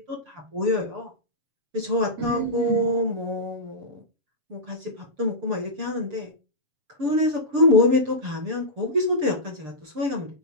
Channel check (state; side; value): late; left; 6.7 ms